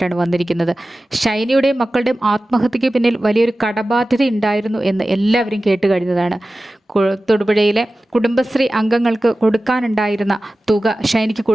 വന്നിരിക്കുന്നത്. ഷൈനിയുടെയും മക്കളുടെയും ആത്മഹത്യയ്ക്ക് പിന്നിൽ വലിയൊരു കടബാധ്യത ഉണ്ടായിരുന്നു എന്ന് എല്ലാവരും കേട്ട് കഴിഞ്ഞതാണ്. തൊടുപുഴയിലെ കുടുംബശ്രീ അംഗങ്ങൾക്ക് കൊടുക്കാനുണ്ടായിരുന്ന തുക ഷൈനിക്ക്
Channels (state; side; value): normal; both; correlation 0.96